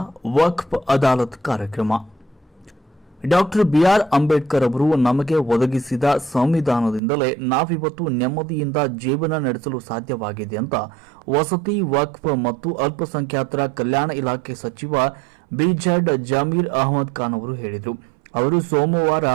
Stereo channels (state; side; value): drops out; left; at 7.0 s